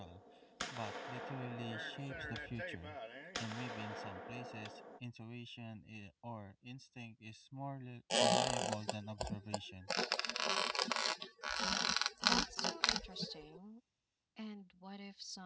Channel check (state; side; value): identical; both; correlation 1.00